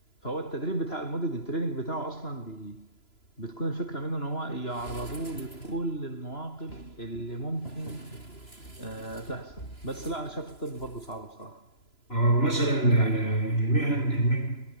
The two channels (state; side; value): late; right; 3.0 ms